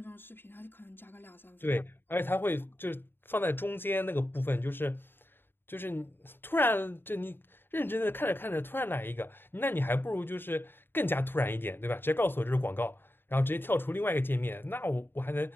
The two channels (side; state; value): right; late; 0.10 ms